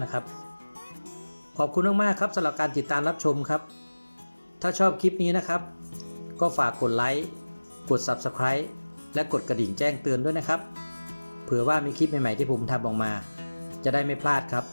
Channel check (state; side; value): inverted; both; correlation -1.00